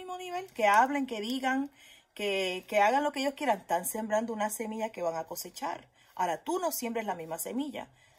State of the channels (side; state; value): both; identical; correlation 1.00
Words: nivel. Que hablen, que digan, que hagan lo que ellos quieran. Están sembrando una semilla que van a cosechar. Ahora, tú no siembres la misma semilla.